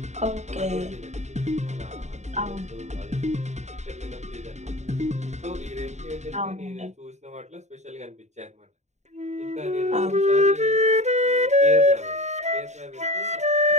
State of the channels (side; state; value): left; late; 0.33 ms